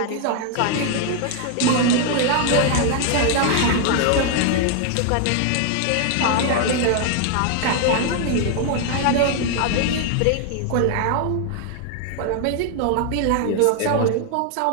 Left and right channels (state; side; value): different; both; correlation 0.00